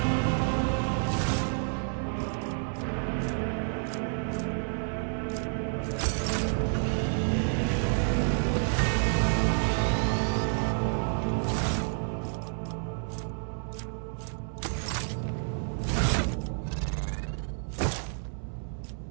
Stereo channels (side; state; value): left; silent; 57 dB below the other